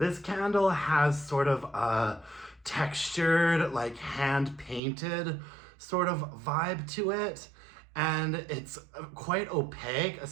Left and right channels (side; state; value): left; drops out; at 4.8 s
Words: candle has sort of a textured, like hand-painted sort of vibe to it. And it's quite opaque,